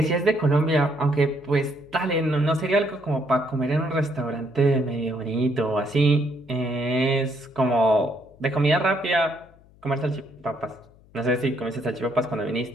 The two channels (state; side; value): noise; left; hum, 27 dB below the sound